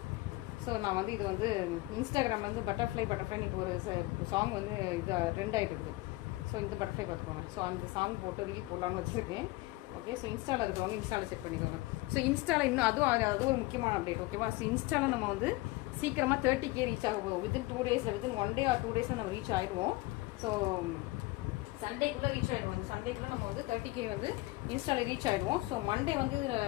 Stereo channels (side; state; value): right; quieter; 20.9 dB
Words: ஸோ நான் வந்து இது வந்து இன்ஸ்டாகிராம் வந்து பட்டர்ஃப்ளை இன்னைக்கு ஒரு சாங் வந்து இது ட்ரெண்ட் ஆகிட்டு இருக்குது. ஸோ இந்த பட்டர்ஃப்ளை பார்த்துக்கோங்க. ஸோ அந்த சாங் போட்டு ரீல் போடலான்னு வச்சுருக்கேன். ஓகே, ஸோ இன்ஸ்டாவில் இருக்கிறவங்க இன்ஸ்டாவில் செட் பண்ணிக்கோங்க. ஸோ இன்ஸ்டாவில் இன்னும் அது ஒரு முக்கியமான அப்டேட். ஓகேவா. ஸோ இன்ஸ்டாவில் நம்ம வந்து சீக்கிரமாக 30K ரீச் ஆகும். Within 2 days, within 1 day or 2 days நம்ம ரீச் ஆகிடுவோம். ஸோ சண்டேக்குள்ளே ரீச் ஆகிடுவோம். சண்டேக்குள்ளே நம்ம வந்து 30K வந்து இன்ஸ்டாவில் ரீச் ஆகிடுவோம். ஸோ மண்டே வந்து